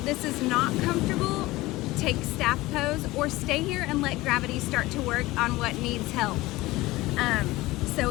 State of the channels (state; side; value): quieter; right; 19.2 dB